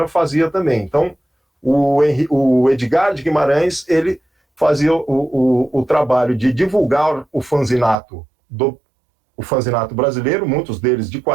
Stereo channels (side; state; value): left; drops out; at 8.0 s